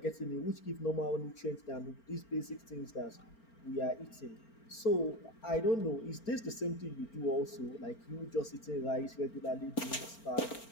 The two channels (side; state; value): right; late; 4.4 ms